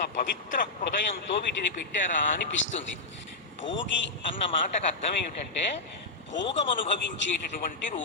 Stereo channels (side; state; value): right; quieter; 3.3 dB